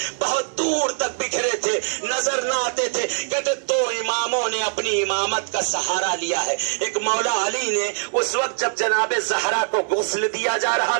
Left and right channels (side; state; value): left; silent; 64 dB below the other